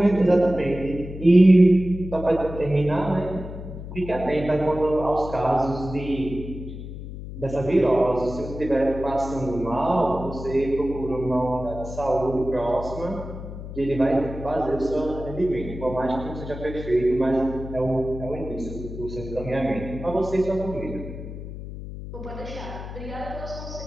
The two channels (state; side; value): noise; left; hum, 10 dB below the sound